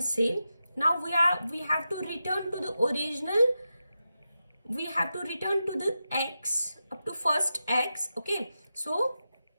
cell. Now we have to return to the original, we have to return to the x up to first x. Okay, so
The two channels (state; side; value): inverted; both; correlation -0.90